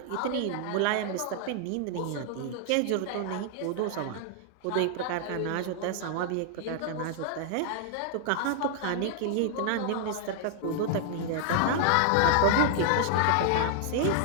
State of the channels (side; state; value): both; different; correlation 0.00